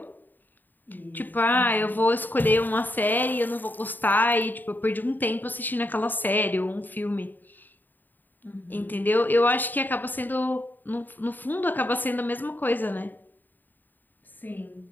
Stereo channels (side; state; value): right; late; 0.089 ms